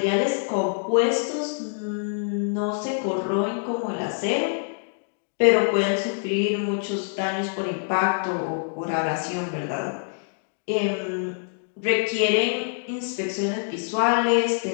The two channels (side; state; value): right; silent; digital silence